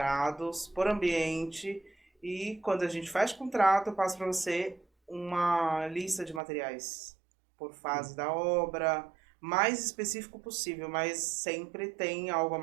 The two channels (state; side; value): drops out; left; at 6.4 s